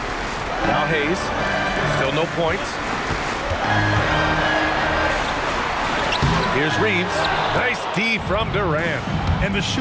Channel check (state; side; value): identical; both; correlation 1.00